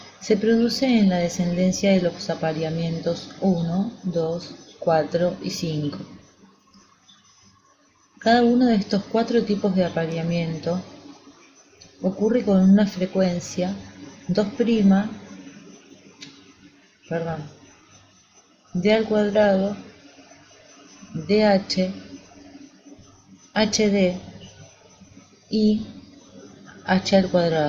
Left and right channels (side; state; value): both; identical; correlation 1.00